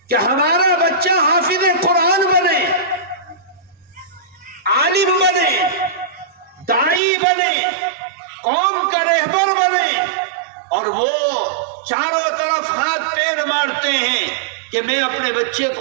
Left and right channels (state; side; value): drops out; left; at 7.0 s